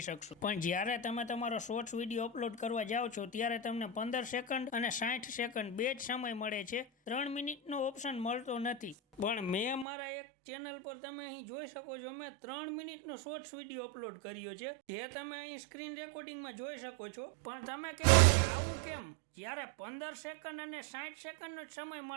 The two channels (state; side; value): drops out; left; at 9.9 s